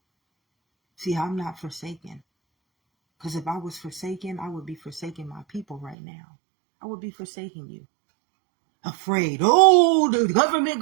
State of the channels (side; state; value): left; drops out; at 6.0 s